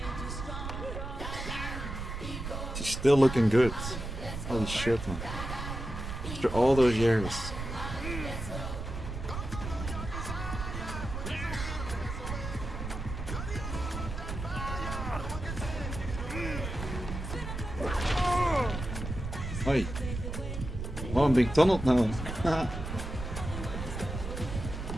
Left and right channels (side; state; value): right; noise; rumble, 6 dB below the sound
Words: Still looking good. Holy shit, man. After all those years. Oi. Oh, I'm being tunneled now.